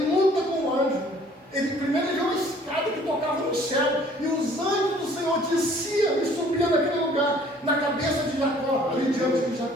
luta com o anjo. Ele primeiro viu uma escada que tocava no céu, e os anjos do Senhor desciam e subiam naquele lugar, na cabeça de Jacó, ali diante de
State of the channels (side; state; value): both; normal; correlation 0.56